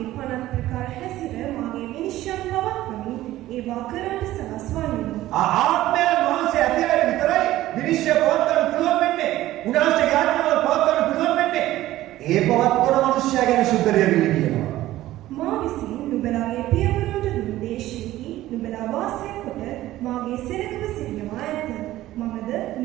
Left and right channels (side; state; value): left; quieter; 15.3 dB